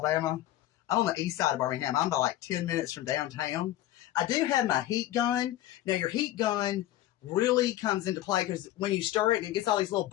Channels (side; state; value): right; quieter; 14.3 dB